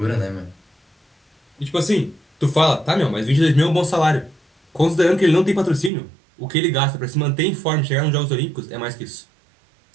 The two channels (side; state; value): left; drops out; at 5.9 s